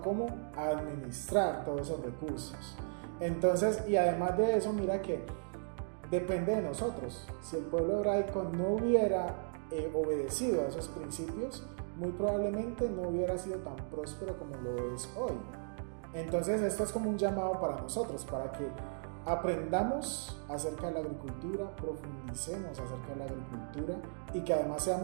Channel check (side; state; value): left; silent; digital silence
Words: cómo administrar todos esos recursos. Entonces, y además de eso, mira que depende de nosotros. Si el pueblo hebraico no hubiera obedecido a esos principios, muy probablemente no hubiera sido tan próspero como lo es hoy. Entonces esto es como un llamado para nosotros, para que aprendamos acerca de la agricultura, profundicemos acerca de la agricultura y que además